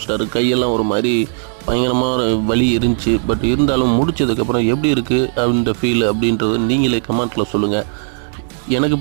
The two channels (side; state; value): left; silent; digital silence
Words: கையெல்லாம் ஒரு மாதிரி பயங்கரமாக வலி இருந்துச்சு. பட் இருந்தாலும் முடித்ததுக்கப்புறம் எப்படி இருக்குது அப்படின்ற ஃபீல் அப்படின்றது நீங்களே கமெண்ட்டில் சொல்லுங்கள். எனக்கு